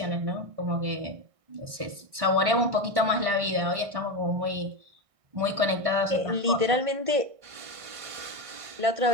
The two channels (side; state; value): left; late; 1.6 ms